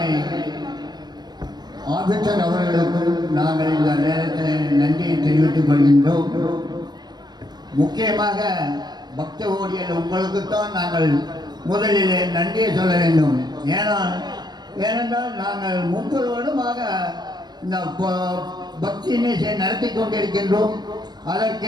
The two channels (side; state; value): left; late; 0.20 ms